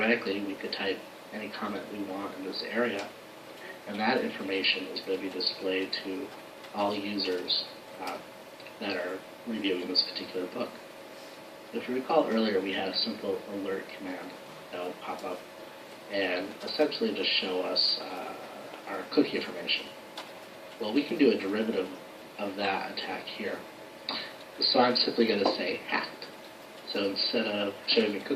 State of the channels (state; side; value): identical; both; correlation 1.00